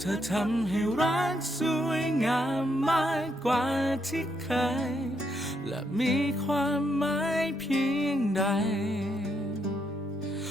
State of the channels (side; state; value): both; normal; correlation 0.78